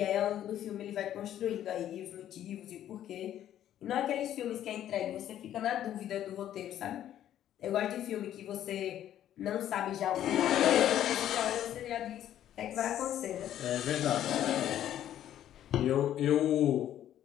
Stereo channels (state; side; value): quieter; right; 11.4 dB